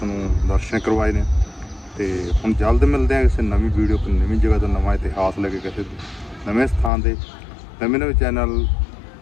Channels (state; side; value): drops out; right; at 6.9 s